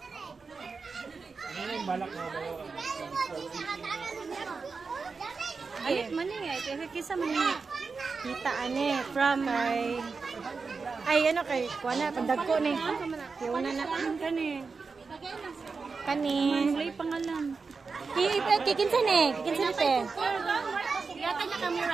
Ano yung balak mo ba? Ay, maning eh. Kisa maning. Kita ane from ay ano kay kuana pandagko ni. Kuana na kani. Kani. May pangalan. Kikinsa ni. Kikinsa ni te. Yata niya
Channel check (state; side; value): quieter; left; 4.7 dB